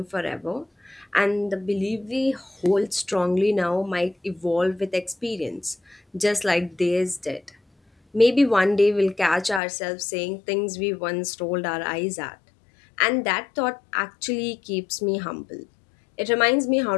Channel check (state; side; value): drops out; right; at 9.6 s